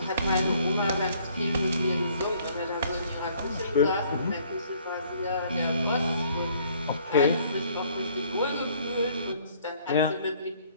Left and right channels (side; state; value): both; inverted; correlation -0.60